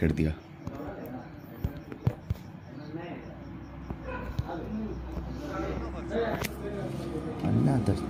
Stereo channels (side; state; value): both; identical; correlation 1.00